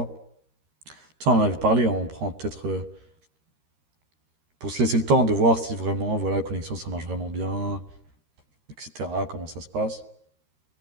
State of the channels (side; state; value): left; late; 13 ms